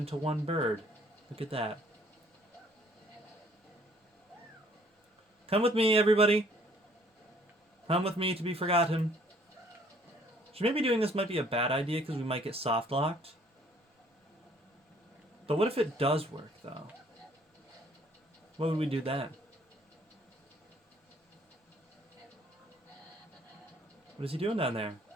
one bird. Look at that. Come with me, everybody. Come with me to be forgotten. So maybe doing this might be a bad idea because we might get soft locked. But what if it does work, though? What would we do then? What is he doing down there?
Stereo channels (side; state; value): both; normal; correlation 0.60